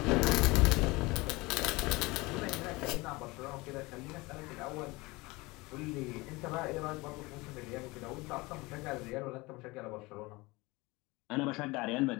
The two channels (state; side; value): quieter; right; 23.1 dB